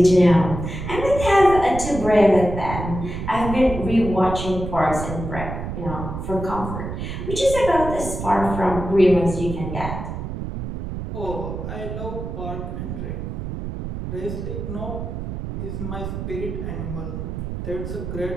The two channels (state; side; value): noise; right; rumble, 6 dB below the sound